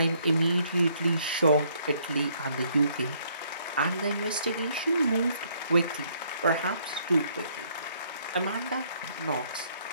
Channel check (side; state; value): both; inverted; correlation -0.67